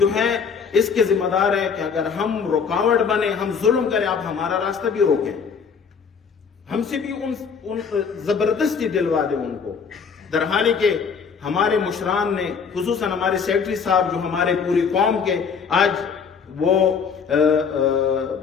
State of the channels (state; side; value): quieter; right; 6.1 dB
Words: ہے اس کے ذمہ دار ہیں کہ اگر ہم رکاوٹ بنے، ہم ظلم کریں، آپ ہمارا راستہ بھی روکیں، ہم سے بھی ان زبردستی دلوا دیں ان کو۔ درحالی کہ ہمارے مشران نے، خصوصاً ہمارے سیکرٹری صاحب جو ہمارے پوری قوم کے آج وہ